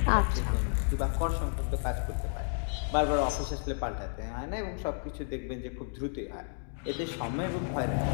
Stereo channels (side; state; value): right; silent; 57 dB below the other